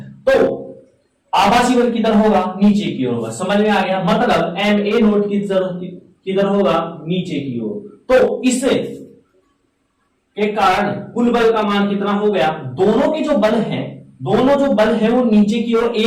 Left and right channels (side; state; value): both; identical; correlation 1.00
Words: तो आभासी बल किधर होगा, नीचे की ओर होगा। समझ में आ गया, मतलब एम ए नोट किधर होगा, नीचे की ओर। तो इससे के कारण कुल बल का मान कितना हो गया, दोनों के जो बल है वो नीचे की ओर